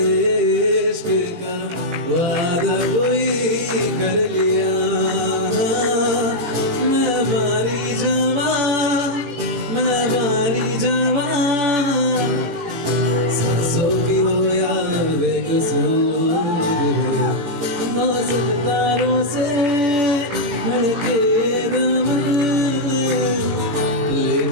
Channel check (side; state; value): left; late; 17 ms